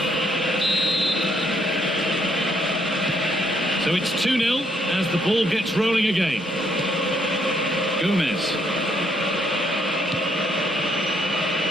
So it's 2-0 as the ball gets rolling again. Gomez.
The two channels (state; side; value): normal; both; correlation 0.72